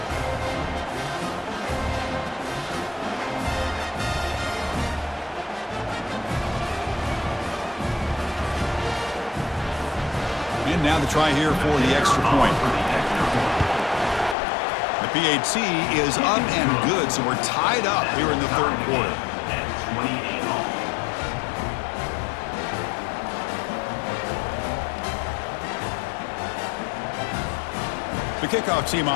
And now the try here for the extra point. The PAT is up and good, so we're tied up here in the third quarter. The kickoff team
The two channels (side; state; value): right; drops out; at 14.4 s